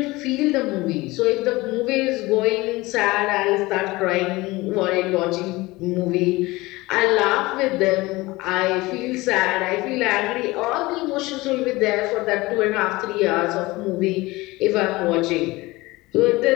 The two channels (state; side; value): quieter; right; 20.9 dB